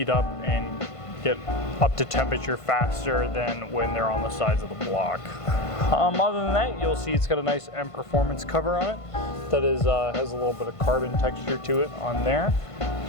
up and get up to temperature faster than when they're on the sides of the block. Other than that, you'll see it's got a nice M Performance cover on it that is has a little bit of carbon texture to it on there,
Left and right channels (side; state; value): right; late; 1.5 ms